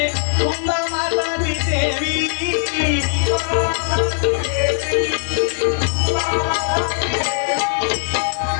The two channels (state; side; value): silent; right; 58 dB below the other